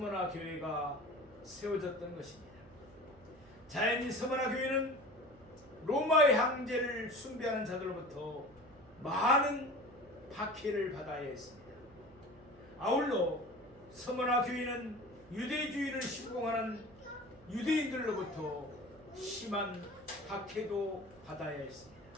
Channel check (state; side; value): noise; right; hum, 24 dB below the sound